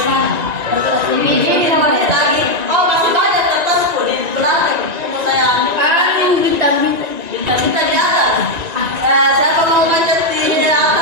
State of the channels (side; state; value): left; late; 1.9 ms